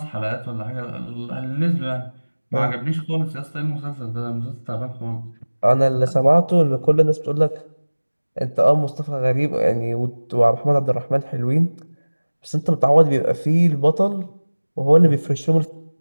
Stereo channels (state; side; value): inverted; both; correlation -1.00